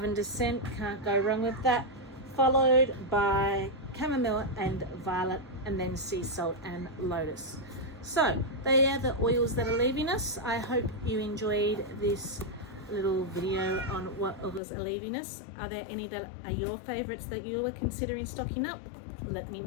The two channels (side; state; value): right; drops out; at 14.6 s